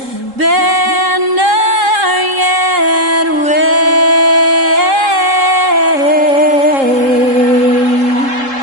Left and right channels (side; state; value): left; late; 3.7 ms